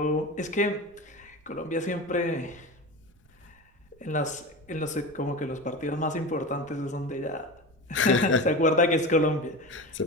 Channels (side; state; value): right; noise; rumble, 30 dB below the sound